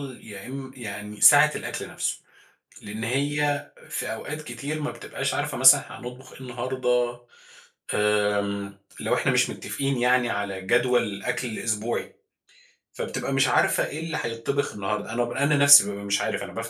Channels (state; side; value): identical; both; correlation 1.00